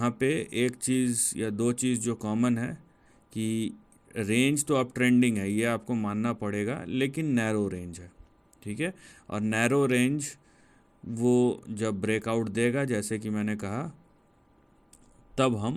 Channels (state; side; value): identical; both; correlation 1.00